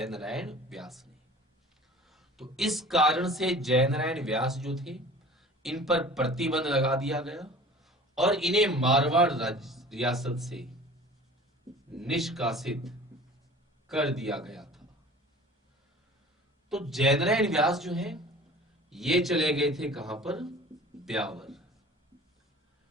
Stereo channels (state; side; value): normal; both; correlation 0.44